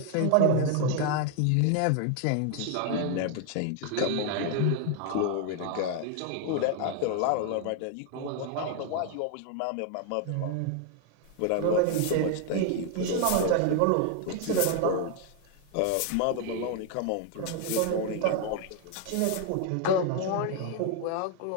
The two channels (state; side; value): different; both; correlation 0.00